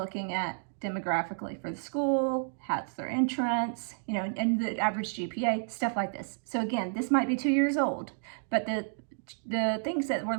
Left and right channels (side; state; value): left; silent; digital silence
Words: at demographically for the school, how's their entrance, and the average GPA, stuff like this. So again, this might be 2 years old, but the things that we're